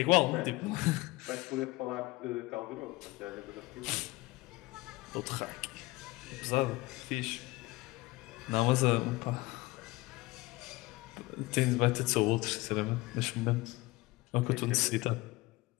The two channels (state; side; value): quieter; right; 21.1 dB